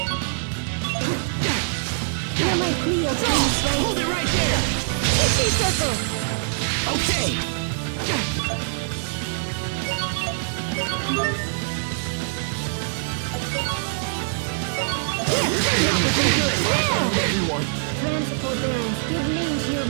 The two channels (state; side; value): silent; left; digital silence